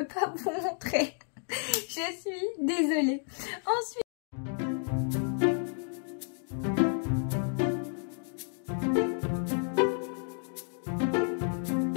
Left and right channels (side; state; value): right; silent; 57 dB below the other